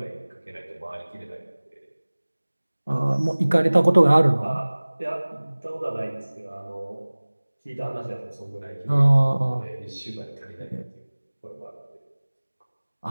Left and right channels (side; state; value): both; inverted; correlation -1.00